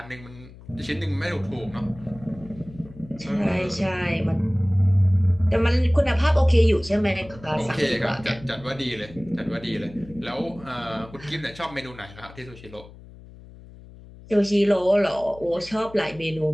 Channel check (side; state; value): left; noise; hum, 19 dB below the sound